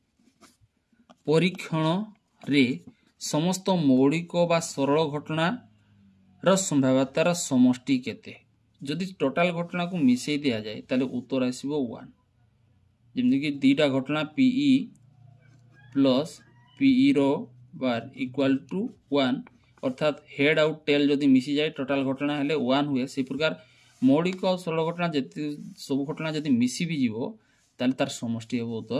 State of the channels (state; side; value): identical; both; correlation 1.00